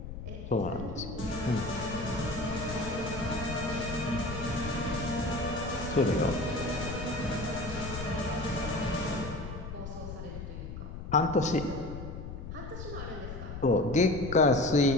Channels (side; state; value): left; noise; rumble, 9 dB below the sound